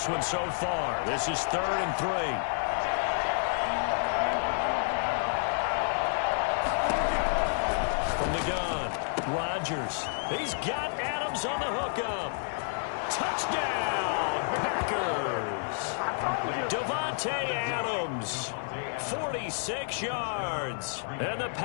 one so far. This is 3rd and 3. From the gun, Rodgers. He's got Adams on the hookup. Touchdown, Packers. Devontae Adams, 46 yards. And the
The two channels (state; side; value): silent; right; digital silence